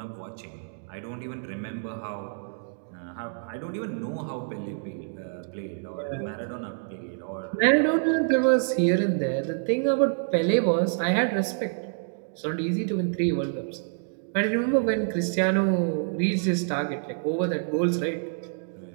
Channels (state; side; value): silent; left; digital silence